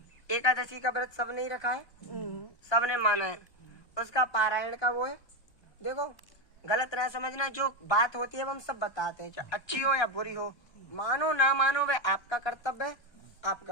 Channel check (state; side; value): late; right; 1.2 ms